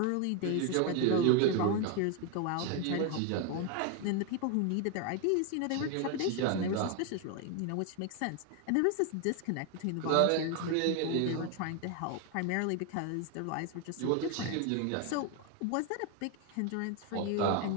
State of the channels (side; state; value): both; different; correlation 0.01